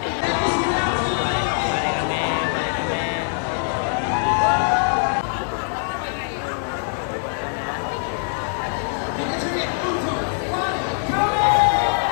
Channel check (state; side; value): silent; right; 57 dB below the other